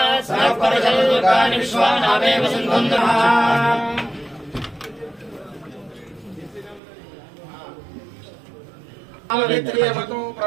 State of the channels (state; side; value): drops out; left; at 6.8 s